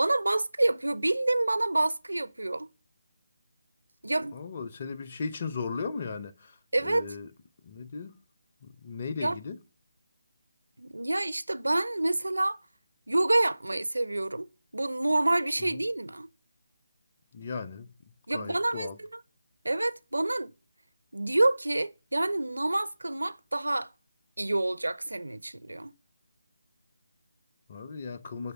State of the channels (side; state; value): both; inverted; correlation -0.98